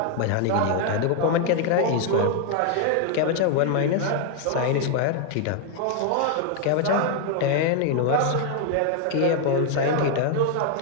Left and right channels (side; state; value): both; different; correlation 0.00